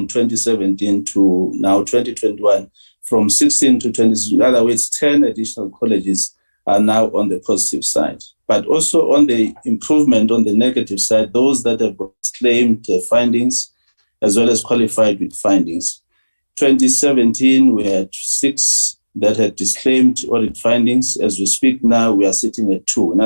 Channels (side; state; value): both; inverted; correlation -1.00